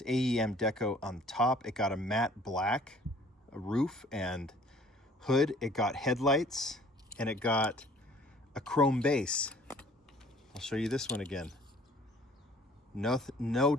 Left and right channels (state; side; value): normal; both; correlation 0.54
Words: AEM deco on top. It got a matte black roof and hood. It got headlights, and it got a chrome base. I'll show you this one again. No